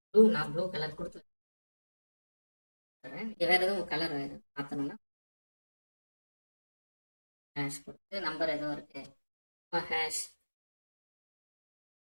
நான் ப்ளூ கலர் கொடுத்துறேன். வேற எதுவும் கலர் மாற்றணும்னா ஹேஷ் கொடுத்து நம்பர் எதுவும் இருக்கு ஹேஷ்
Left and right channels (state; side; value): inverted; both; correlation -1.00